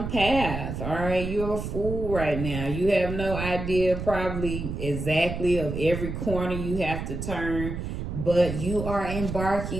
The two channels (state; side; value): noise; right; rumble, 5 dB below the sound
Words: path. All right. You're a fool right now. You have no idea probably exactly of every corner you have to turn, but you are